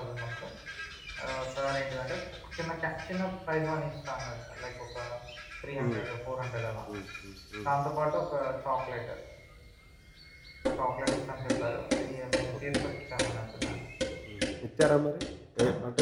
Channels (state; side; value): identical; both; correlation 1.00